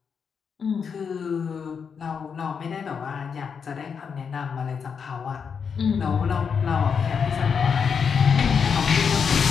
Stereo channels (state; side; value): quieter; right; 6.4 dB